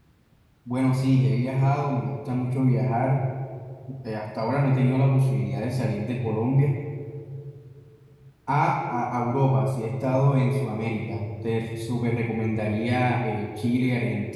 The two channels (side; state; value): both; identical; correlation 1.00